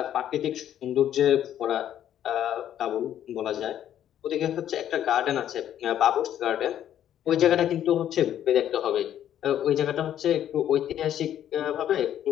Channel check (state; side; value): quieter; right; 10.8 dB